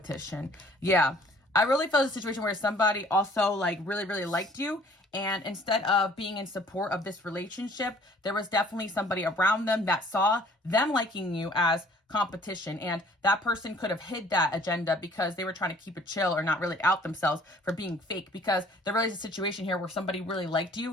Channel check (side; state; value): both; normal; correlation 0.56